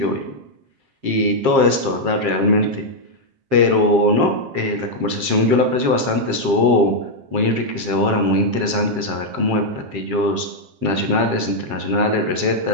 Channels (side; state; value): left; late; 7.5 ms